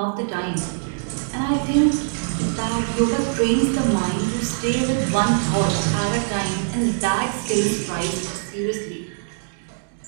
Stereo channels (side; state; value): left; silent; digital silence